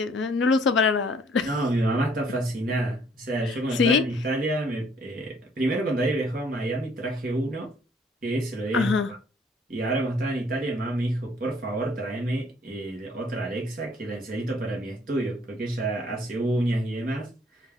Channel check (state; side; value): normal; both; correlation 0.61